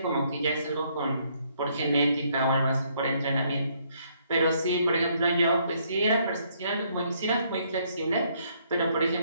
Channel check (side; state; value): both; inverted; correlation -0.69